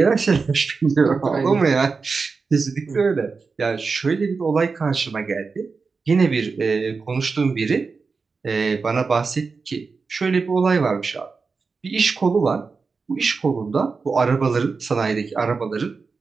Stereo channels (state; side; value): quieter; left; 4.6 dB